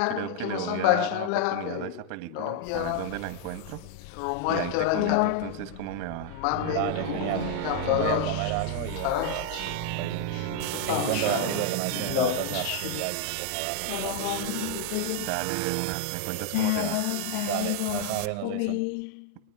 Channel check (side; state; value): both; different; correlation 0.00